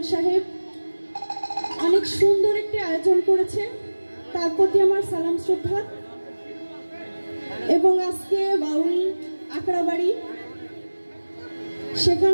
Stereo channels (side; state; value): both; inverted; correlation -1.00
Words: সাহেব অনেক সুন্দর একটি আয়োজন করেছে, তার প্রতি আমার সালাম শ্রদ্ধা। এবং আজকে বাউল আখড়াবাড়ি